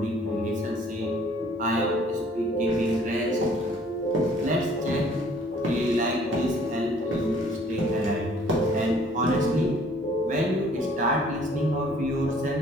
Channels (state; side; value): normal; both; correlation 0.57